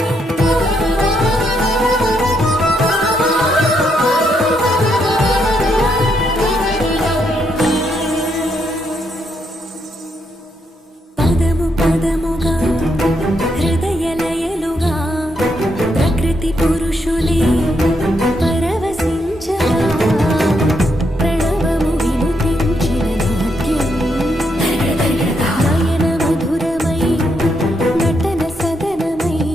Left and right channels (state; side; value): normal; both; correlation 0.78